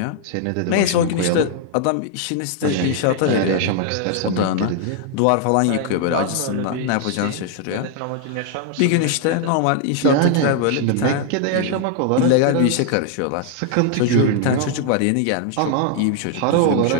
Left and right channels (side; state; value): both; different; correlation 0.00